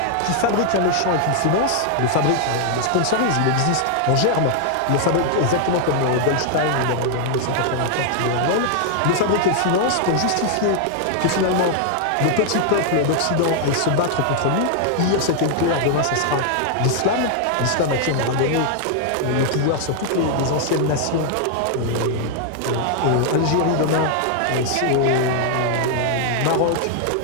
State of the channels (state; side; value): different; both; correlation 0.00